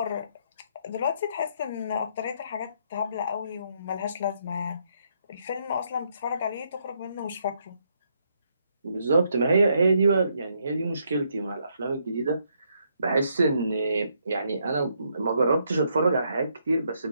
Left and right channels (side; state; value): both; inverted; correlation -0.74